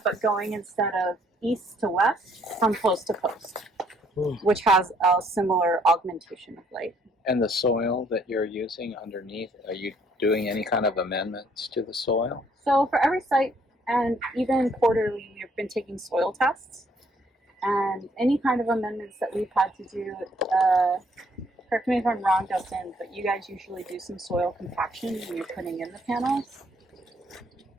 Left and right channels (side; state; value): both; normal; correlation 0.66